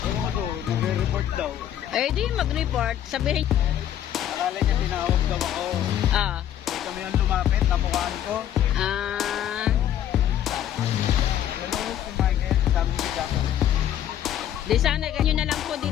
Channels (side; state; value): right; quieter; 10.9 dB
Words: ko, nagre-report daw. Eh, di mag-report. Sabihin. Akala niya tinawag daw ako. Ah. Eh, kami yung lumapit, namukhaan ko. Ah. Hello, si Michael, sabi ni Jacob. Di sana ganyan na lang po